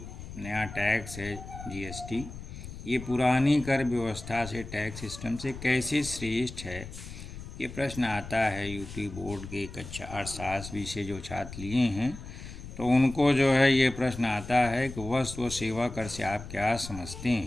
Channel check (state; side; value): noise; left; rumble, 12 dB below the sound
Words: नया टैक्स है जीएसटी, ये पुरानी कर व्यवस्था से, टैक्स सिस्टम से कैसे श्रेष्ठ है, ये प्रश्न आता है यूपी बोर्ड के कक्षा अर्थशास्त्र विषय जो छात्र लिए हैं, तो उनको जो है ये प्रश्न आता है कि वस्तु व सेवा कर से आप क्या समझते